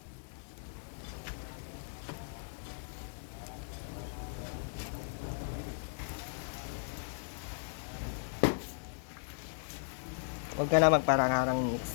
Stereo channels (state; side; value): silent; right; digital silence